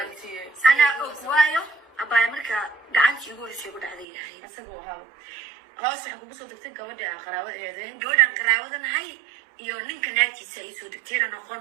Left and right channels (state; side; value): drops out; left; at 4.0 s